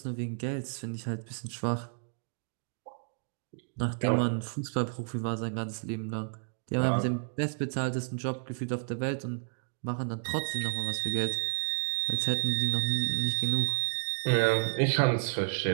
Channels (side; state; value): left; silent; digital silence